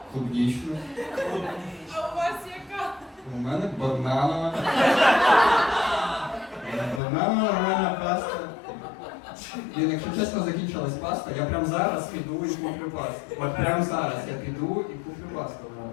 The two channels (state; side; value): drops out; right; at 7.0 s